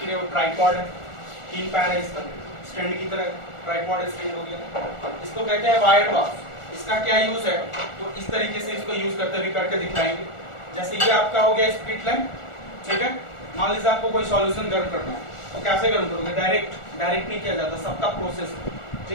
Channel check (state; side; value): late; right; 1.4 ms